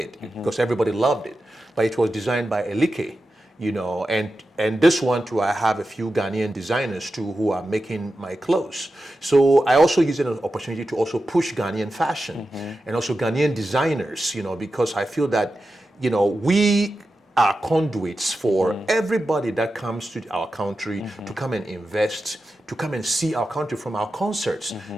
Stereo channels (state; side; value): normal; both; correlation 0.92